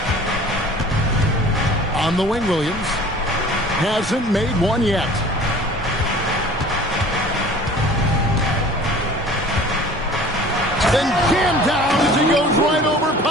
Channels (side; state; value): both; normal; correlation 0.46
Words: On the wing, Williams. Hasn't made one yet. Then jammed down as he goes right over